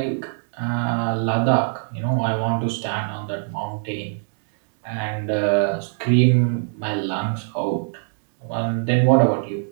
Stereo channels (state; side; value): silent; left; digital silence